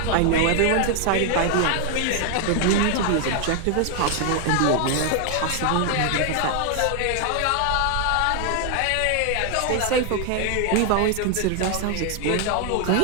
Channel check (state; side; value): different; both; correlation 0.00